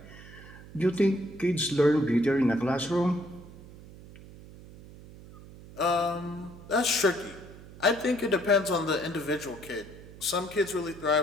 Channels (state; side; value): noise; right; hum, 18 dB below the sound